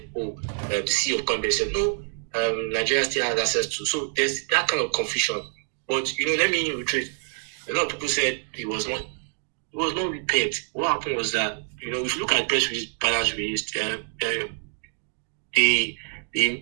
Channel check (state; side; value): silent; left; 61 dB below the other